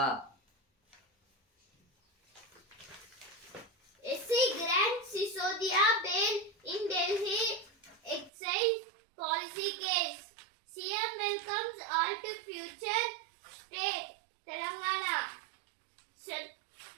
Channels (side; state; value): left; drops out; at 8.3 s